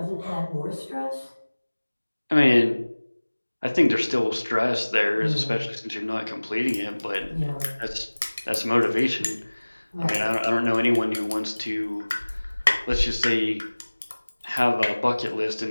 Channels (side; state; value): both; inverted; correlation -1.00